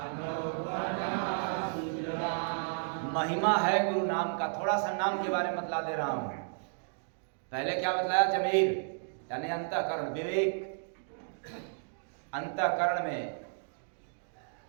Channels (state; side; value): silent; left; digital silence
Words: बना सुजान। महिमा है गुरु नाम का। थोड़ा सा नाम के बारे में बतला दे रहा हूं। पहले क्या बतलाया? जमीर यानी अंतःकरण, विवेक। अंतःकरण में